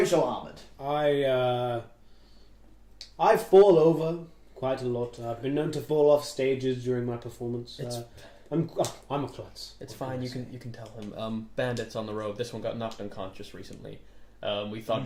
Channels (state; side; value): identical; both; correlation 1.00